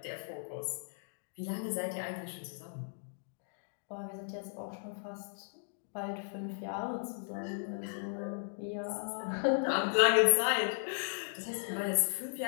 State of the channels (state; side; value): silent; right; digital silence